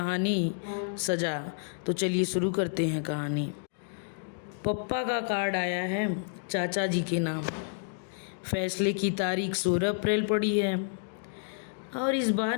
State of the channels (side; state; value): right; silent; digital silence